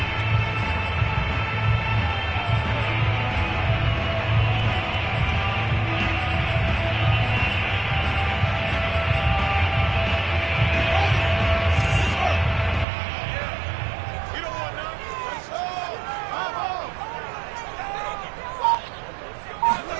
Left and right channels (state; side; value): drops out; left; at 12.9 s